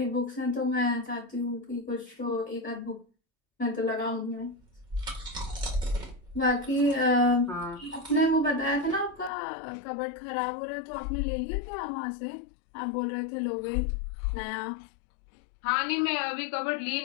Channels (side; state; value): right; drops out; at 9.3 s